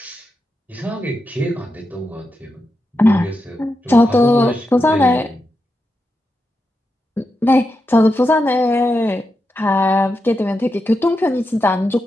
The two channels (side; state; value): both; normal; correlation 0.87